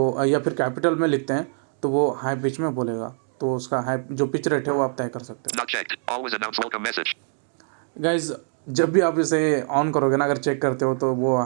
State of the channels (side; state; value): left; silent; 55 dB below the other